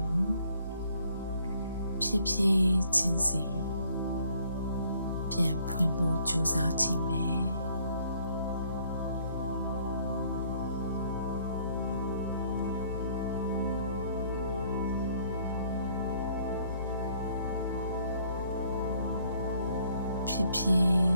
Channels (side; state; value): both; inverted; correlation -0.63